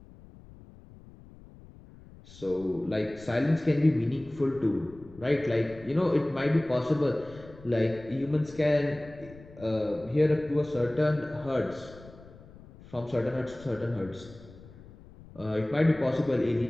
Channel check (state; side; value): noise; left; rumble, 20 dB below the sound